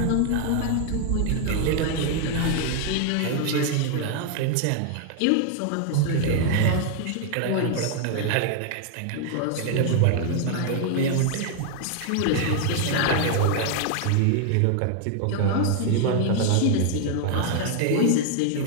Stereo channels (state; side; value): different; both; correlation 0.00